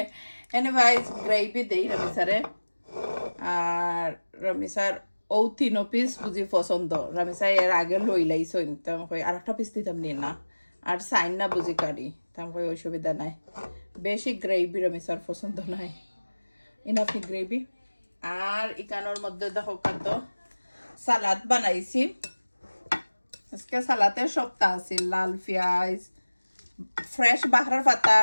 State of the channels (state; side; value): inverted; both; correlation -1.00